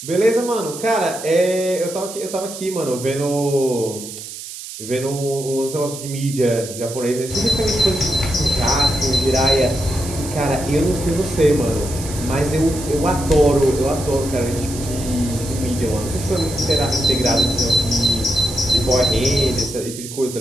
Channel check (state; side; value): noise; right; hiss, 11 dB below the sound